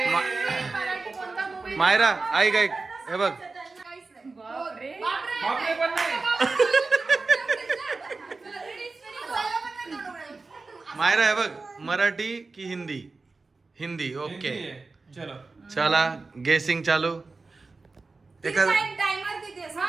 मायरा ऐक ऐक हे बघ. मायरा हे बघ मराठी की हिंदी. हिंदी ओके. चला गेसिंग चालू.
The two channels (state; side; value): quieter; left; 3.8 dB